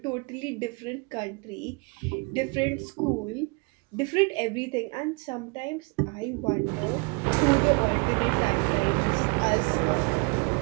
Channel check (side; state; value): left; quieter; 29.9 dB